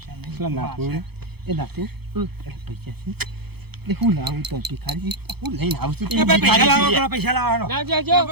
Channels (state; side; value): late; left; 0.97 ms